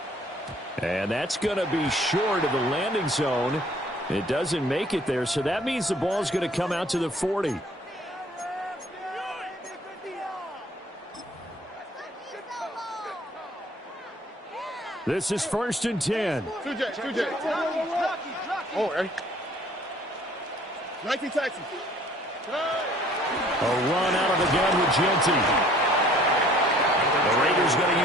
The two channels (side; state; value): both; normal; correlation 0.56